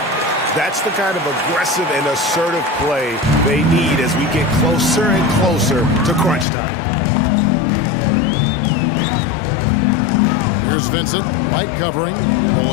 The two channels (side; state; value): right; drops out; at 6.5 s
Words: That's the kind of aggressive and assertive play they need as we get closer and closer to crunch time. Here's Vincent. White covering.